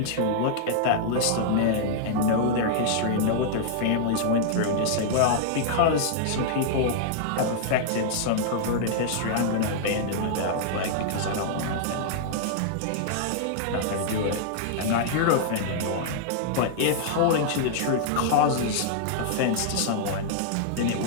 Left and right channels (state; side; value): different; both; correlation -0.01